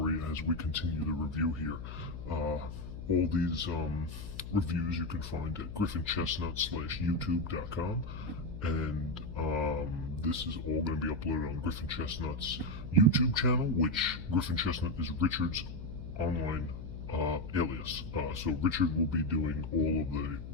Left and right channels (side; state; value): left; noise; hum, 9 dB below the sound